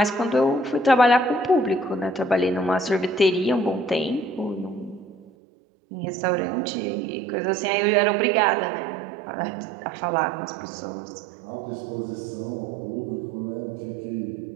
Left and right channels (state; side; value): drops out; left; at 5.2 s